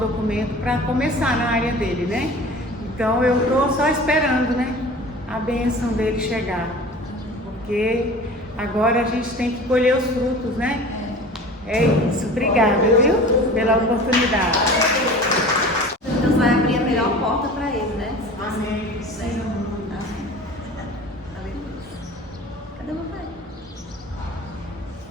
para começar na área dele, né? Então eu estou só esperando, né, a bênção dele chegar, porque agora a gente tem que colher os frutos, né? É isso, obrigada, viu, pela oportunidade. Deus vai abrir a melhor porta para ele, né? Amém. Cadê o meu pai?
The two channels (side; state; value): both; normal; correlation 0.40